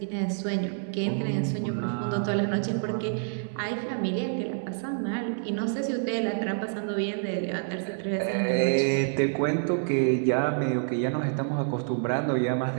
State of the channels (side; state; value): left; silent; 60 dB below the other